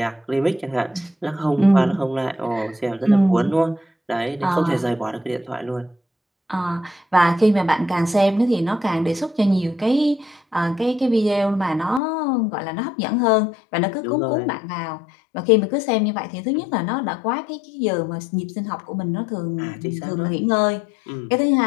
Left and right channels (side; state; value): right; drops out; at 12.0 s